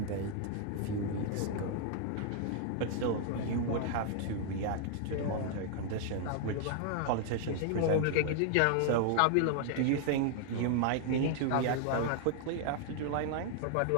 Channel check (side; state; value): both; different; correlation 0.00